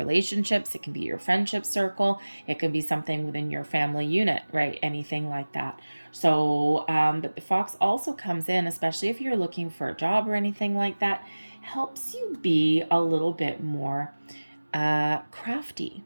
It can be your friendship circle. It can be something within your family unit, right? Anything like that. So, but the fox also comes in, especially if you're looking for a job or anything like that, helps you be a little bit more crafty.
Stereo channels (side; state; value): both; inverted; correlation -1.00